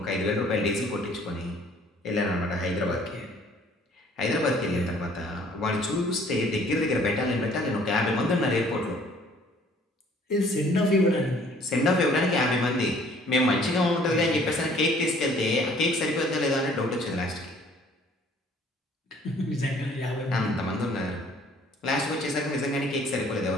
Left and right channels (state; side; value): normal; both; correlation 0.57